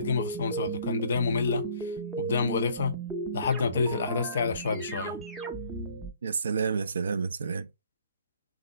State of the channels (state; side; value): inverted; both; correlation -0.58